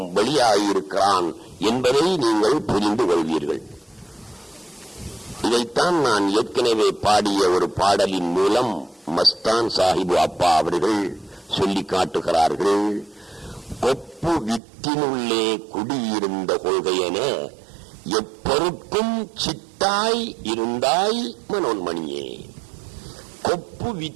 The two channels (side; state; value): left; drops out; at 14.6 s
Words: வெளியாகியிருக்கிறான் என்பதை நீங்கள் புரிந்து கொள்வீர்கள். இதைத்தான் நான் ஏற்கனவே பாடிய ஒரு பாடலின் மூலம் மஸ்தான் சாஹிபு அப்பா அவர்கள் சொல்லி காட்டுகிறார்கள். கொப்பு வித்தினுள்ளே குடியிருந்த கொள்கையென எப்பொருட்கும் சித்தாய் இருந்தாய் மனோன்மணியே. கொப்பு